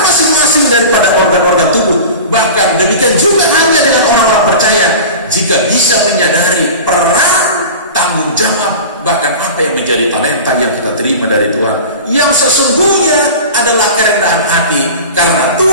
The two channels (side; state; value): both; inverted; correlation -0.33